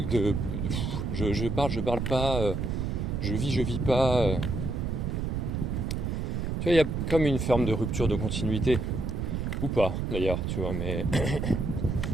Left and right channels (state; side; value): noise; right; rumble, 1 dB below the sound